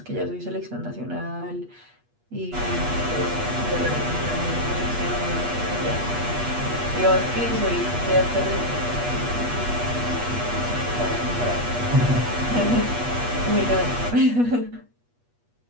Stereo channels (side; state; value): left; late; 8.3 ms